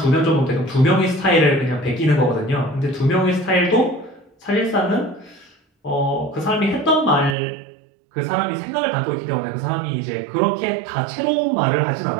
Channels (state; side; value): drops out; left; at 7.4 s